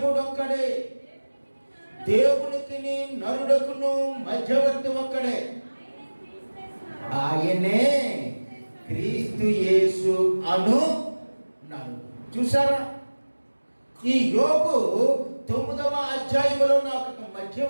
దేవునికి నరుడకును మధ్యవర్తి ఒక్కడే, ఆయనే క్రీస్తు యేసు అను నరుడు. చూసారా? ఈ యోబు 9వ అధ్యాయములో నాకు ఒక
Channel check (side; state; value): both; inverted; correlation -1.00